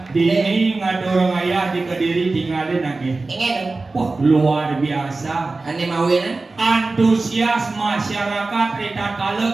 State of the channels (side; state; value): left; quieter; 3.5 dB